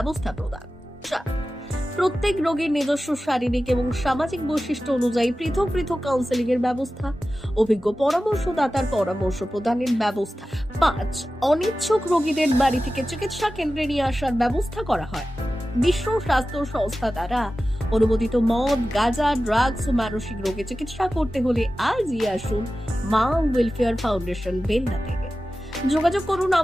প্রদান। 4. প্রত্যেক রোগীর নিজস্ব শারীরিক এবং সামাজিক বৈশিষ্ট্য অনুযায়ী পৃথক পৃথক কাউন্সেলিং এর ব্যবস্থা, অভিজ্ঞ পরামর্শদাতার পরামর্শ প্রদানের ব্যবস্থা। 5. অনিচ্ছুক রোগীদের বাড়ি থেকে চিকিৎসা কেন্দ্রে নিয়ে আসার ব্যবস্থা করা হয়। বিশ্ব স্বাস্থ্য সংস্থা দ্বারা অনুমোদিত মদ, গাঁজা, ড্রাগস ও মানসিক রোগে চিকিৎসা করতে হলে আজই আসুন মা ওয়েলফেয়ার ফাউন্ডেশন বেলদা থেকে। যোগাযোগ করুন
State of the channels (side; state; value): both; normal; correlation 0.94